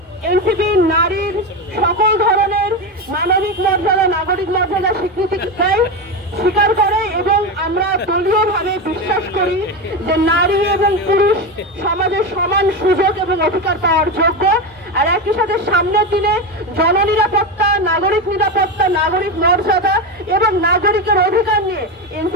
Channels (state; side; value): normal; both; correlation 0.16